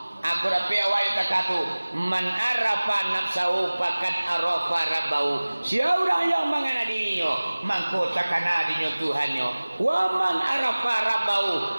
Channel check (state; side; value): inverted; both; correlation -1.00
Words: Aku dapat awak kata man arafa nafsahu faqad arafa rabbahu. Siapa yang mengana dirinya maka takana dirinya Tuhannya. Wa man arafa